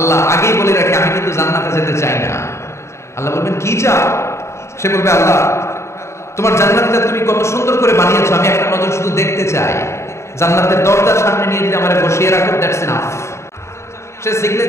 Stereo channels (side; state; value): right; late; 0.13 ms